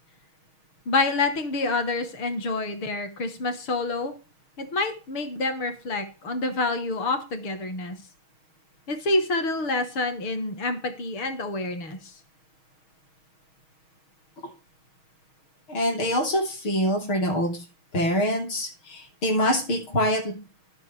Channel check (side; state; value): right; late; 6.3 ms